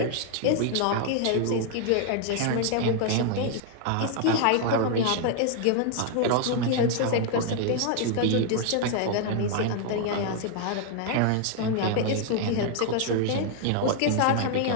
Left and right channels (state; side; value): different; both; correlation 0.00